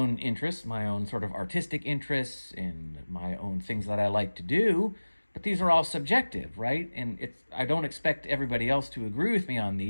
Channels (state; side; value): inverted; both; correlation -1.00